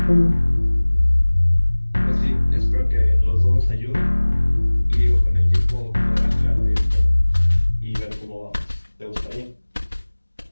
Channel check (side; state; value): both; inverted; correlation -1.00